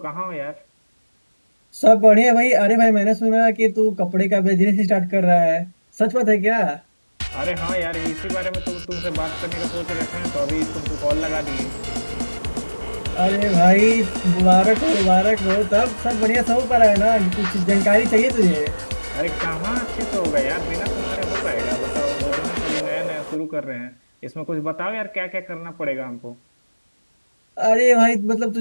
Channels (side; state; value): both; inverted; correlation -1.00